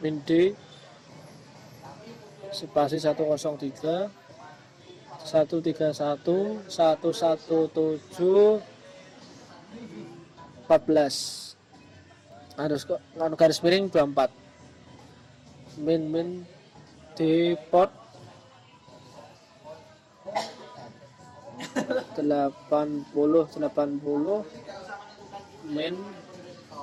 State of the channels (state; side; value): identical; both; correlation 1.00